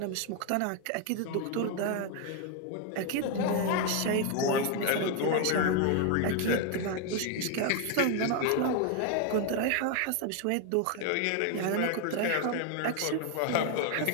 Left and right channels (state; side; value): different; both; correlation 0.01